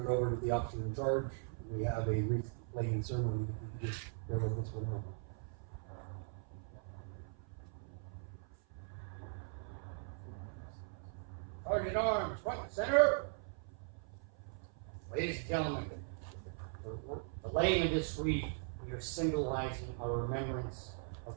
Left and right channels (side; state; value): left; silent; 51 dB below the other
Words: it over to the officer in charge. We have a wreath laying ceremony. If you just bear with us for a moment. Sergeant Arms, front and center. Ladies and gentlemen, the laying of this wreath, we are symbolizing our remembrance of